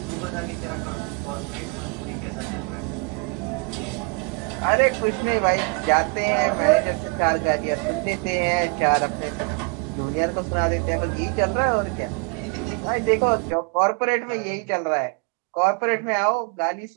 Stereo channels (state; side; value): quieter; left; 31.6 dB